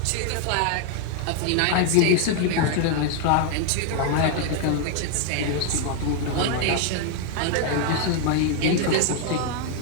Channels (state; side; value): different; both; correlation 0.00